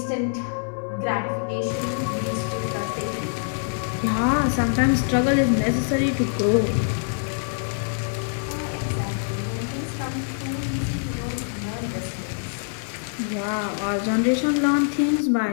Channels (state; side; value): silent; right; digital silence